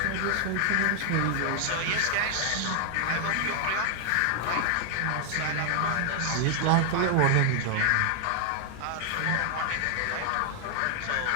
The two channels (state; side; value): different; both; correlation 0.00